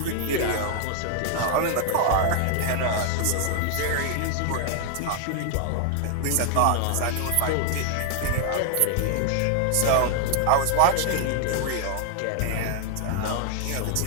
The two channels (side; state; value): both; different; correlation 0.00